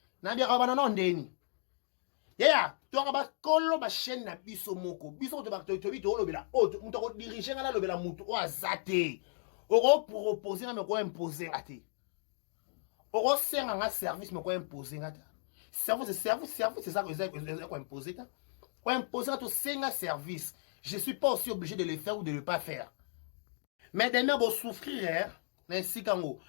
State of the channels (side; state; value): right; silent; 55 dB below the other